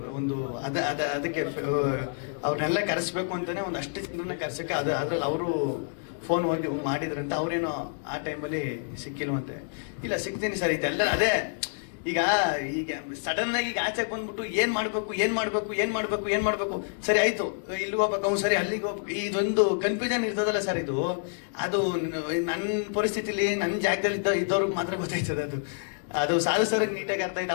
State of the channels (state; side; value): silent; right; digital silence